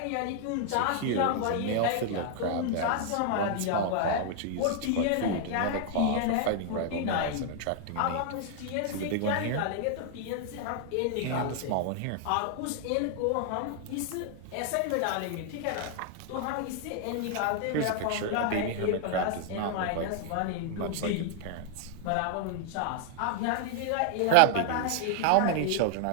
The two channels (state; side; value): different; both; correlation 0.00